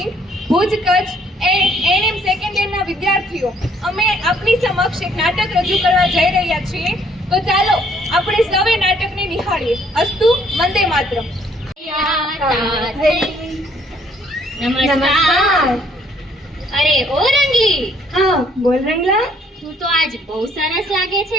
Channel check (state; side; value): normal; both; correlation 0.64